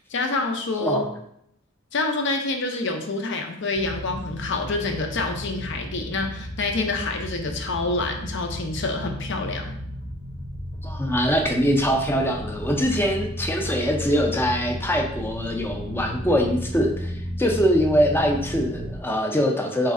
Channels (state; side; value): normal; both; correlation 0.53